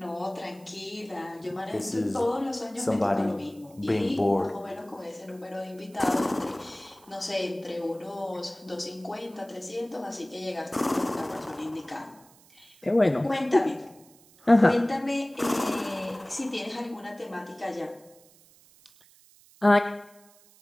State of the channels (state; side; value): noise; right; hiss, 27 dB below the sound